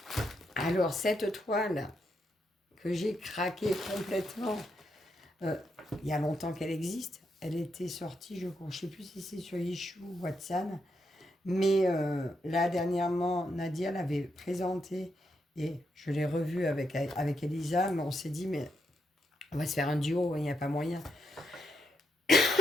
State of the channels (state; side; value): normal; both; correlation 0.80